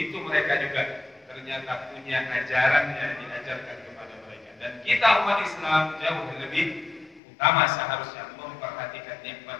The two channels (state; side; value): drops out; right; at 7.2 s